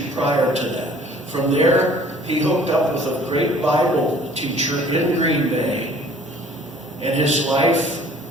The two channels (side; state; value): both; normal; correlation 0.53